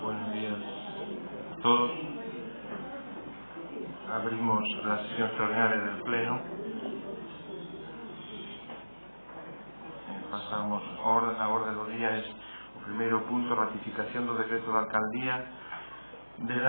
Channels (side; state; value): both; inverted; correlation -1.00